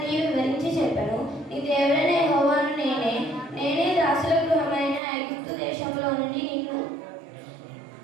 వివరించి చెప్పాను. నీ దేవుడైన యెహోవాను నేనే దాసుల గృహమైన ఐగుప్తు దేశంలో నుండి నిన్ను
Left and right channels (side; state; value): left; drops out; at 5.0 s